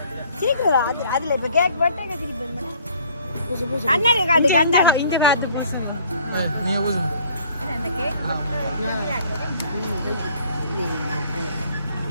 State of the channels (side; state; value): both; inverted; correlation -0.57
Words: சீக்கிரம் அதுல இப்ப கேக் போட்டு கண்ணாடி காட்டு கண்ணாடி இந்த நீங்க பூசுங்க. அந்த கேக்